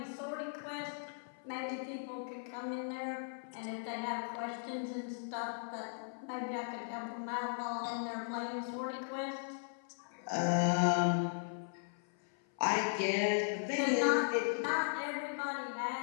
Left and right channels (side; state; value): right; silent; 53 dB below the other